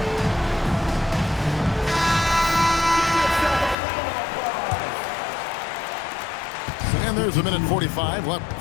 And there's a minute 45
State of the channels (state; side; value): drops out; right; at 3.8 s